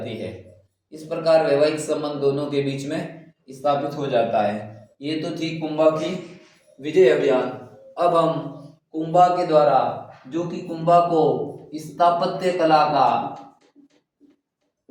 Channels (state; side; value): identical; both; correlation 1.00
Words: है। इस प्रकार वैवाहिक संबंध दोनों के बीच में स्थापित हो जाता है। ये तो थी कुंभा की विजय अभियान। अब हम कुंभा के द्वारा, जो कि कुंभा को स्थापत्य कला